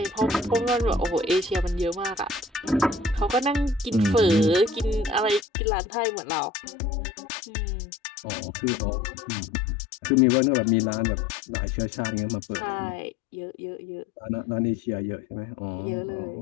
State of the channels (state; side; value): drops out; right; at 5.5 s